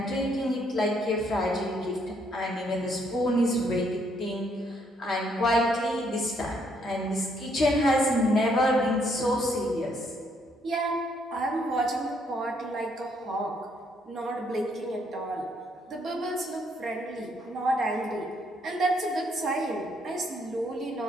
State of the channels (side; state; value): both; normal; correlation 0.70